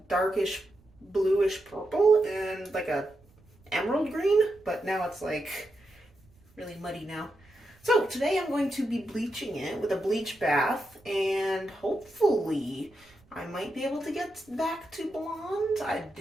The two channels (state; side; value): noise; right; rumble, 29 dB below the sound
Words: darkish bluish purple and like a emerald green, but now it's like really muddy now. So today I'm going to be bleaching it with a bleach bath, and hopefully I might be able to get back to blonde. I